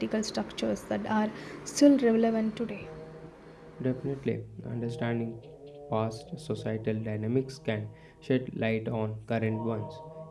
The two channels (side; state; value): both; identical; correlation 1.00